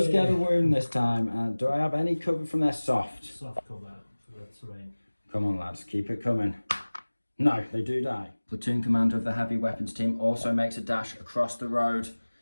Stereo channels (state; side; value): inverted; both; correlation -1.00